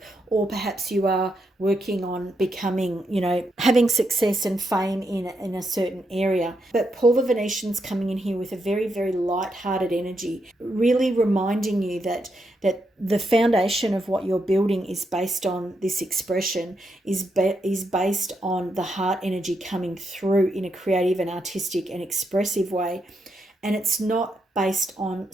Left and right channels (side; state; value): both; normal; correlation 0.81